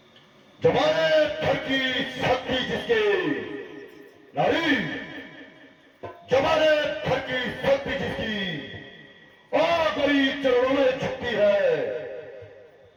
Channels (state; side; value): identical; both; correlation 1.00